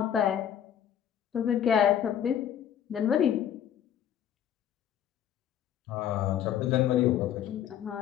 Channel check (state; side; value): quieter; right; 9.9 dB